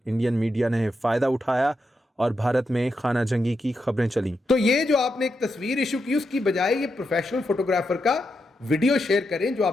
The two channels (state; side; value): normal; both; correlation 0.85